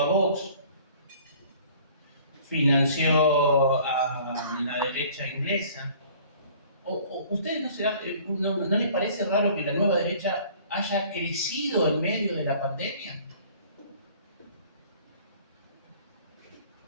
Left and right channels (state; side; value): inverted; both; correlation -0.51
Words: a Vox, financió a la derecha inglesa. ¿Ustedes no les parece raro que la nueva derecha haya crecido en medio de la pandemia?